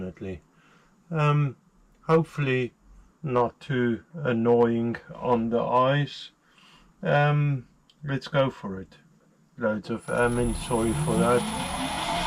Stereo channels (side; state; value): both; identical; correlation 1.00